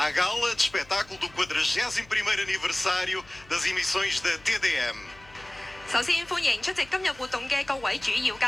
gala de espetáculo do 41º aniversário das emissões da TDM. 首先歡迎出席今日活動嘅各位主要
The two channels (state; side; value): noise; left; hum, 24 dB below the sound